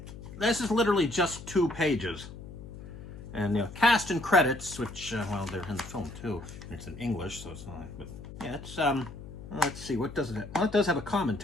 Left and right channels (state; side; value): noise; left; hum, 13 dB below the sound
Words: This is literally just 2 pages. And cast and credits, which, well, they're in the film too. And it's in English, so it's not, but yeah, it's, let's see, what does it have? Well, it does have a